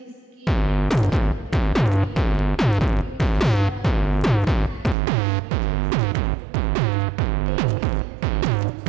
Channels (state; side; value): drops out; left; at 5.0 s